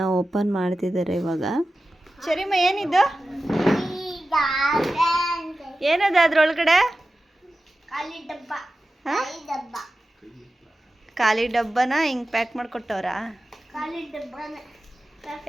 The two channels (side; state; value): both; normal; correlation 0.94